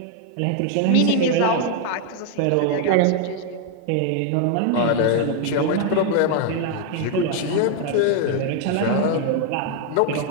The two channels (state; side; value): different; both; correlation 0.00